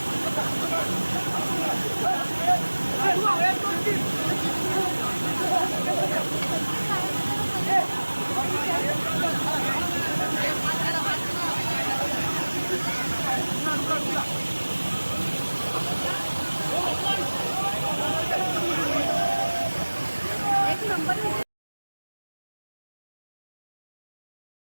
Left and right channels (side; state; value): both; inverted; correlation -1.00